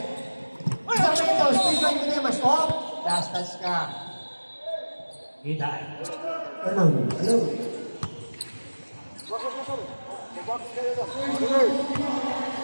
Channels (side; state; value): both; inverted; correlation -1.00